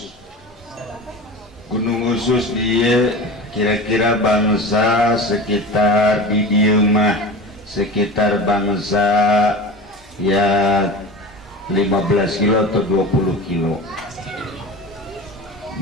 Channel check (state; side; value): normal; both; correlation 0.32